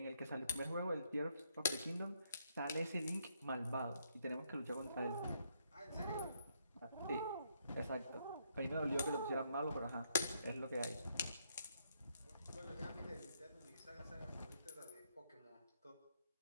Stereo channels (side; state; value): both; inverted; correlation -0.74